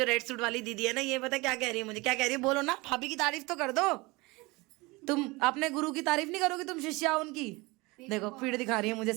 रेड सूट वाली दीदी है ना, ये पता क्या कह रही है मुझे, क्या कह रही है बोलो ना, भाभी की तारीफ तो कर दो। तुम अपने गुरु की तारीफ नहीं करोगी, तुम शिष्या उनकी। देखो पीठ दिखा रही है मुझे,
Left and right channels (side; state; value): left; quieter; 23.9 dB